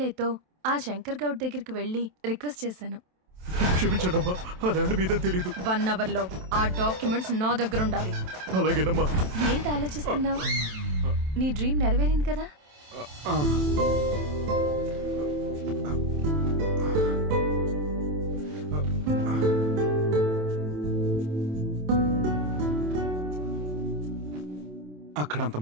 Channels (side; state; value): left; late; 27 ms